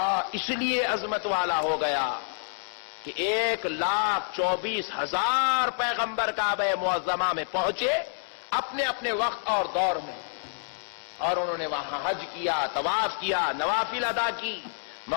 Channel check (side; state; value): right; silent; 59 dB below the other